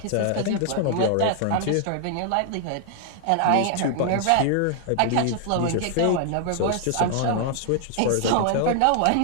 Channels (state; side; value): different; both; correlation 0.00